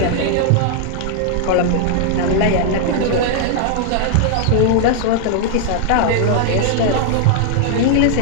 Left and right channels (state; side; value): different; both; correlation 0.00